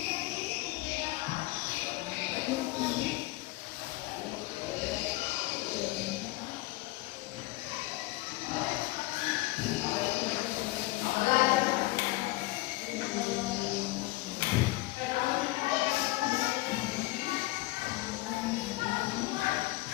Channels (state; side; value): quieter; right; 20.2 dB